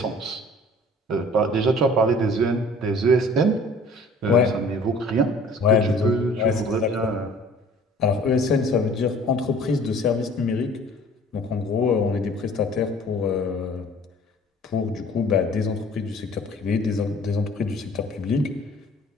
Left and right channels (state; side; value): normal; both; correlation 0.50